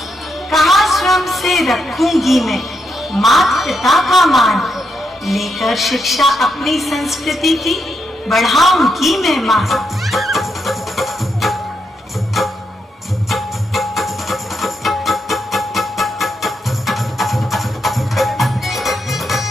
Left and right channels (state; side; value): normal; both; correlation 0.81